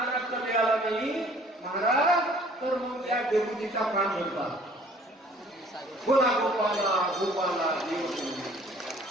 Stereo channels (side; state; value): both; normal; correlation 0.55